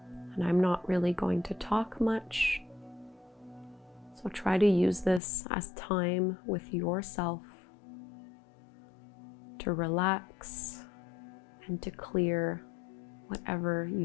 And I'm not really going to talk much, so try to use this as time with yourself to relax and to clear whatever you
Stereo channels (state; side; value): drops out; right; at 5.2 s